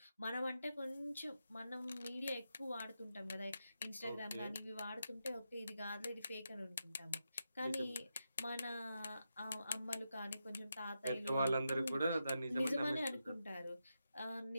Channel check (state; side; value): inverted; both; correlation -0.87